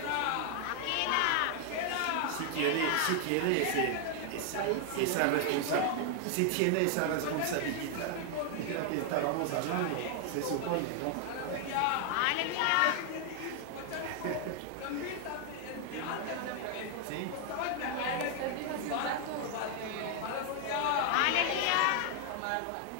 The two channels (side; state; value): both; different; correlation 0.00